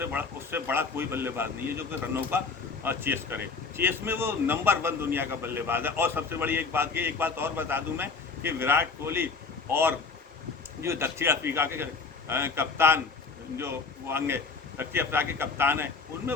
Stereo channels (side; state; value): right; quieter; 4.6 dB